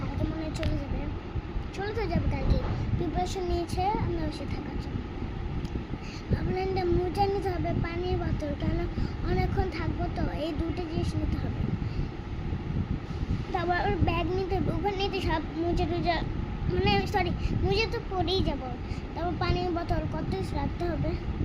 মনে হয় চলে তো যাবে কালকে। প্রিপারেশন নিয়েছে আমরা বসে থাকার জন্য। ভাবলেন যে মোজা নিতে হবে, পানির বোতল, কেন অনেকক্ষণ থাকবো তো, এই দুটো জিনিস নিতে হবে। তারপর ওর ব্যাগ নিতে হবে, ওখানে নিতে সব মোজা টোজা, মানে সরি মোজা তো পরেই যাবো। তারপর পানির বোতল কত কিছু রাখতে হবে,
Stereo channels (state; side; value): identical; both; correlation 1.00